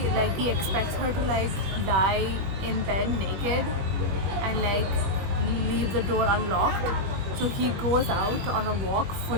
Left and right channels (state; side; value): late; left; 21 ms